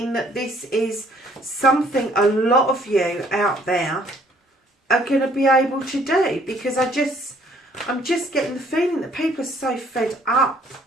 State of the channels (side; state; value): both; normal; correlation 0.62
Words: that this is something a lot of you out there are going to be able to do, because I'm just getting the feeling that people are so fed up.